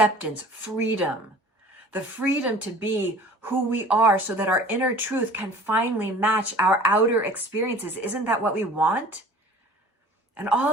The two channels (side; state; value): both; normal; correlation 0.45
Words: freedom. The freedom to be who we are so that our inner truth can finally match our outer experiences. Isn't that what we want? And